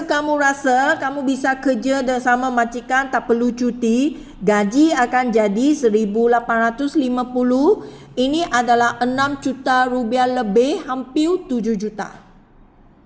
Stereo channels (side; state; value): both; identical; correlation 1.00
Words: kamu rasa kamu bisa kerja bersama majikan tak perlu cuti, gaji akan jadi 1,850. Ini adalah 6 juta rupiah lebih, hampir 7 juta.